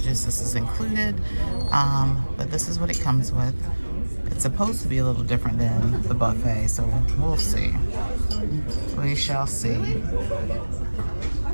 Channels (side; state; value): both; inverted; correlation -1.00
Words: this is included. But this is what it comes with. It's supposed to be a little different than the buffet, so we'll see. We shall see.